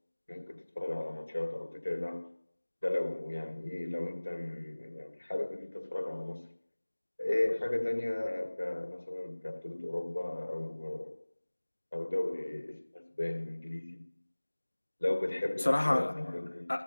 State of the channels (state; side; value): inverted; both; correlation -1.00